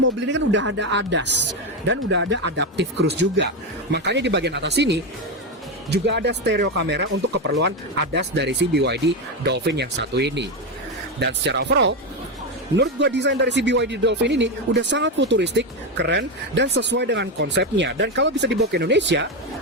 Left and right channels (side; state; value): both; normal; correlation 0.11